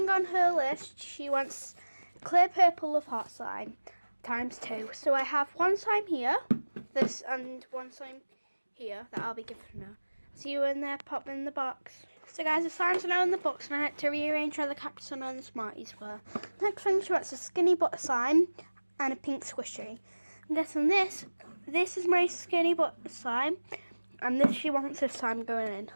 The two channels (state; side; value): inverted; both; correlation -1.00